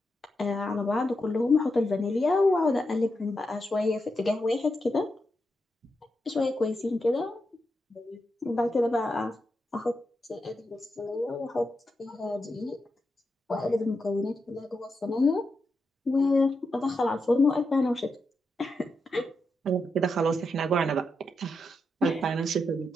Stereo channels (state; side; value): normal; both; correlation 0.86